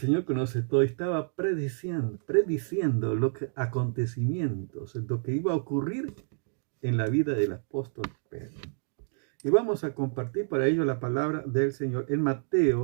conoce todo y estaba prediciendo acontecimientos, lo que iba a ocurrir en la vida del apóstol Pedro. Y vamos a compartir para ello la palabra del Señor en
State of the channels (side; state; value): left; silent; 59 dB below the other